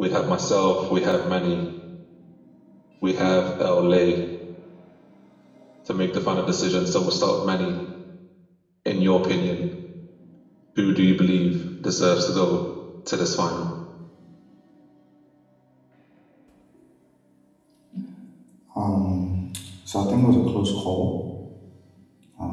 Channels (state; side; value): identical; both; correlation 1.00